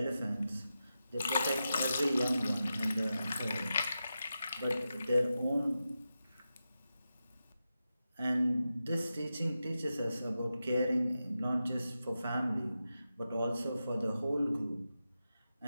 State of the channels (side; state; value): both; inverted; correlation -0.90